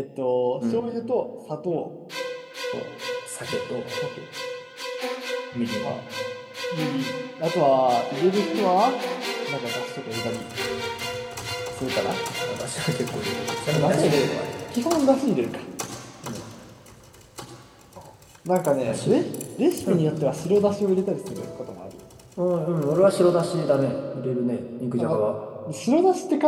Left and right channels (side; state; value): both; identical; correlation 1.00